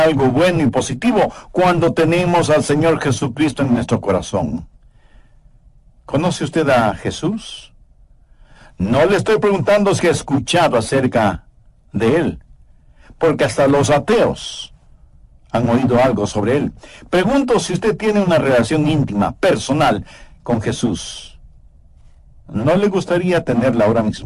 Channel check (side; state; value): both; identical; correlation 1.00